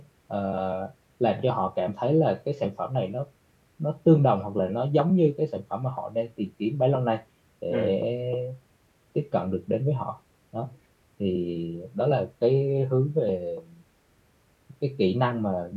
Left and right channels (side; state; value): both; identical; correlation 1.00